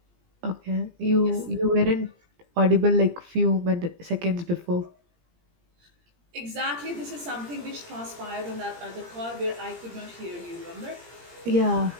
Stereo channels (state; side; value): late; left; 17 ms